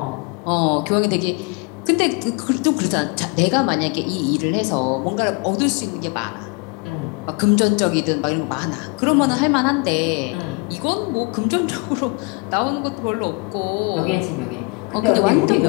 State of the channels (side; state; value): right; quieter; 29.8 dB